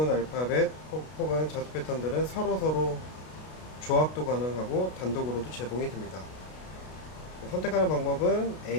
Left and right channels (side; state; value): right; late; 32 ms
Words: 알파벳 혹은 자수 패턴들은 서로 조합도 가능하고 단독으로도 제공이 됩니다. 선택하는 방법은